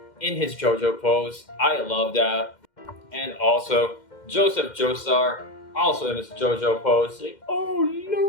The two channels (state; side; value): late; right; 2.1 ms